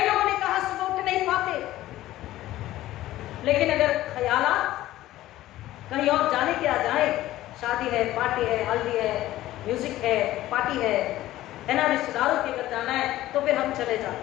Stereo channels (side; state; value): right; quieter; 15.2 dB